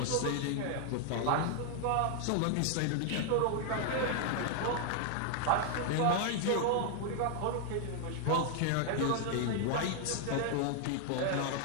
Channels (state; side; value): different; both; correlation 0.00